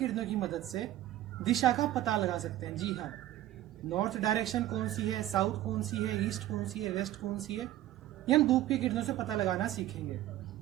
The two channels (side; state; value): left; quieter; 13.9 dB